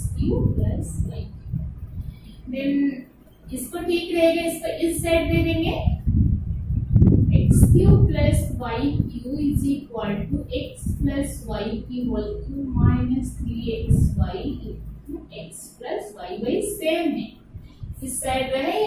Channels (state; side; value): identical; both; correlation 1.00